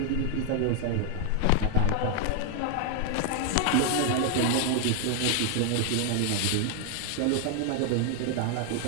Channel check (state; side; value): different; both; correlation 0.00